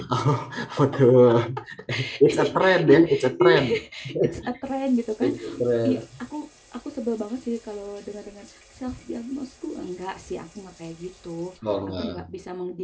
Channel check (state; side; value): identical; both; correlation 1.00